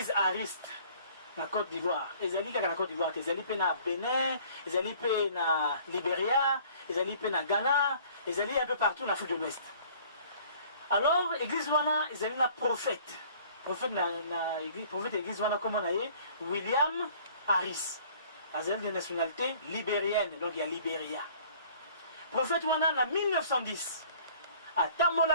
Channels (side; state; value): both; inverted; correlation -0.53